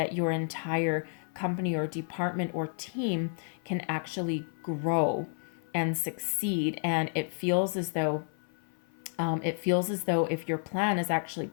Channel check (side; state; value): right; silent; 57 dB below the other